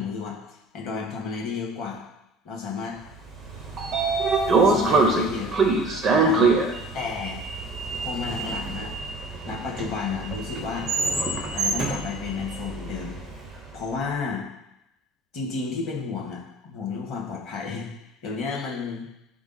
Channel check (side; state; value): both; normal; correlation 0.45